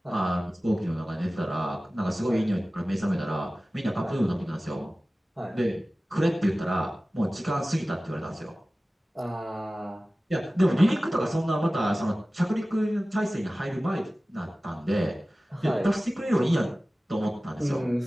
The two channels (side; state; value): both; normal; correlation 0.97